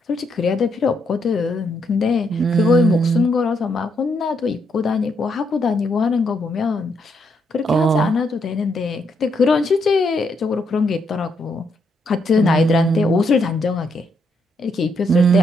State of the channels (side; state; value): both; normal; correlation 0.77